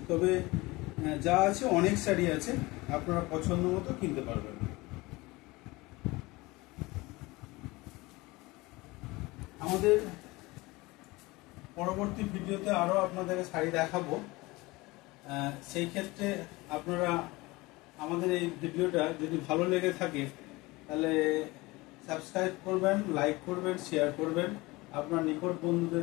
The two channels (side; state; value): right; quieter; 22.1 dB